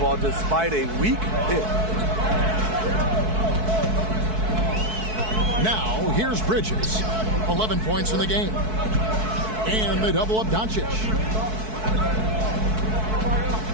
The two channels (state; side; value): late; left; 4.6 ms